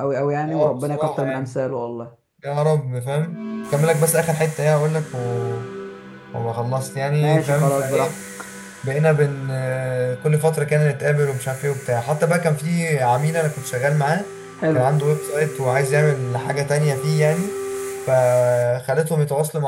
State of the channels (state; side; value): identical; both; correlation 1.00